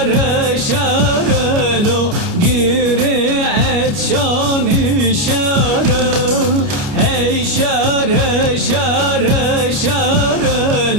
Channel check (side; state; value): left; late; 29 ms